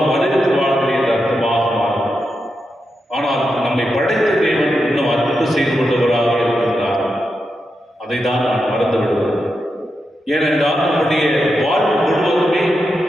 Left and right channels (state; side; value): normal; both; correlation 0.87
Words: மனிதத்து வாழ்கிறேன் என்ற அர்த்தமாக மாறும். ஆனால் நம்மை படைத்த தேவன் இன்னும் அன்பு செய்து கொண்டவராக இருக்கின்றார். அதை தான் நான் மறந்து விடுவோம். ஏனென்றால் நம்முடைய வாழ்வு முழுவதுமே